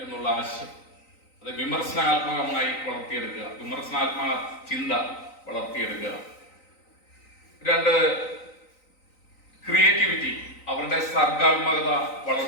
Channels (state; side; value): late; right; 3.9 ms